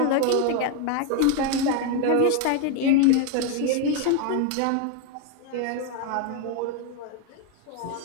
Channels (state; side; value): different; both; correlation 0.01